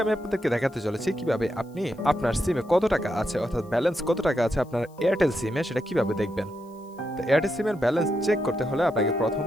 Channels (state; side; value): noise; left; hiss, 30 dB below the sound